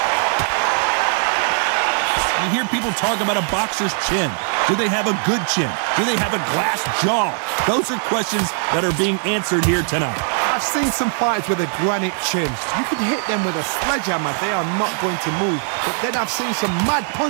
You hear people talk about a boxer's chin. Do they have a good chin? Do they have a glass jaw? Those are questions that are being answered here tonight. I've seen some fighters with a granite chin. You can hit them with a sledgehammer. They are not going to move. But then I've seen some mad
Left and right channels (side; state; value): left; silent; 64 dB below the other